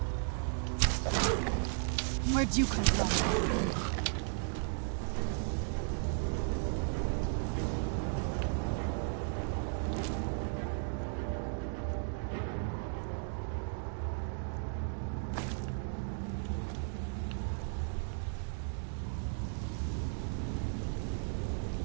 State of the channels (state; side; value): silent; left; 54 dB below the other